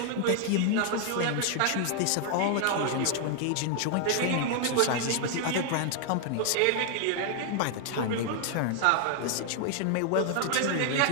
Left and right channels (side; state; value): both; different; correlation 0.00